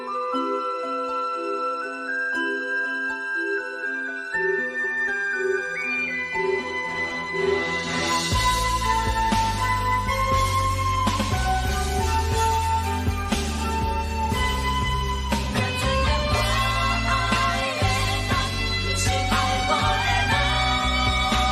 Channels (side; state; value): both; identical; correlation 1.00